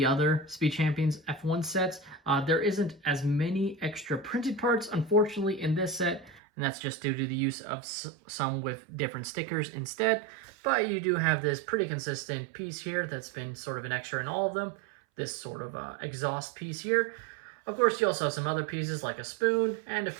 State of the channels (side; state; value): left; drops out; at 6.4 s